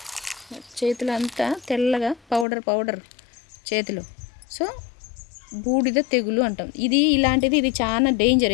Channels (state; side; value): drops out; right; at 2.5 s